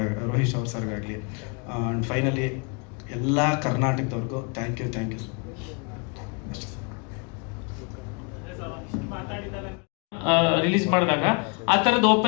ಅವ್ರ ಸರ್ಗಾಗಲಿ. ಆ್ಯಂಡ್ ಫೈನಲಿ ಎಲ್ಲ ಕರ್ನಾಟಕದವ್ರಿಗೂ ಥ್ಯಾಂಕ್ ಯು ರಿಲೀಸ್ ಮಾಡಿದಾಗ ಆ ಥರದ್ದು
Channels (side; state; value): right; quieter; 34.3 dB